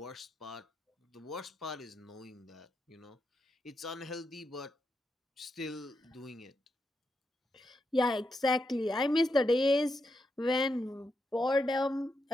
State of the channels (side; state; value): both; normal; correlation 0.84